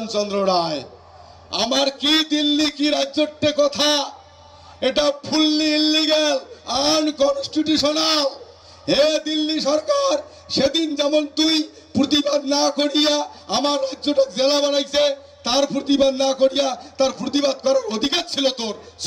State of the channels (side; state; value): both; identical; correlation 1.00